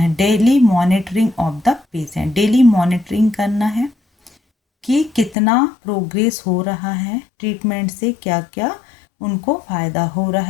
Daily monitoring of the patient, daily monitoring करना है कि कितना प्रोग्रेस हो रहा है ट्रीटमेंट से, क्या क्या उनको फ़ायदा हो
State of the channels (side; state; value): right; drops out; at 5.4 s